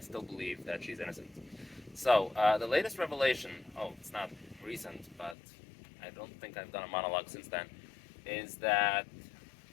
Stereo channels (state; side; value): drops out; right; at 5.4 s